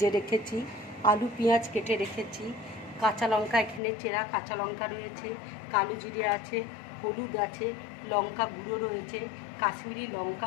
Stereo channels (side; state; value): right; drops out; at 3.8 s